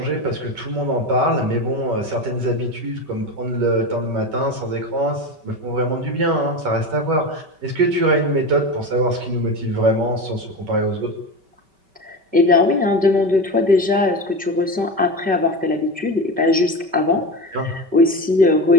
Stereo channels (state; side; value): late; left; 5.2 ms